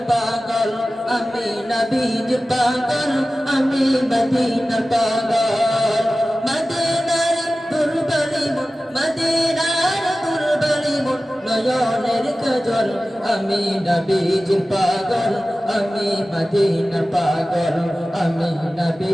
পাগল, আমি নবীজির পাগল, আমি মদিনার পাগল। মদিনার দুর্বলী মন, মদিনার দুর্বলী মন, নয়নের কাজল। আমি নবীজির পাগল, আমি মদিনার পাগল, আমি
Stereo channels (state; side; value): normal; both; correlation 0.96